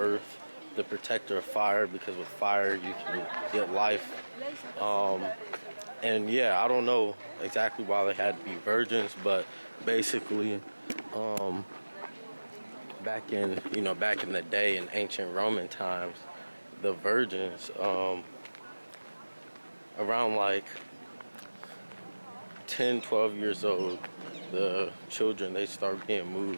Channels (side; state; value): both; inverted; correlation -1.00